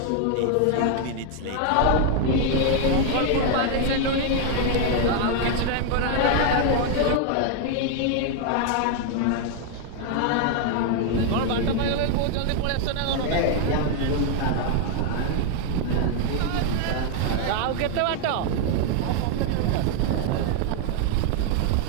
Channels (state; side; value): different; both; correlation 0.00